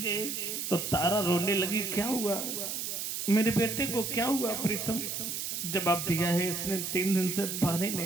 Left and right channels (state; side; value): noise; right; hiss, 3 dB below the sound